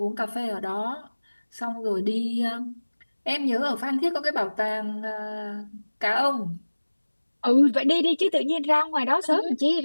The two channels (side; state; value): both; inverted; correlation -1.00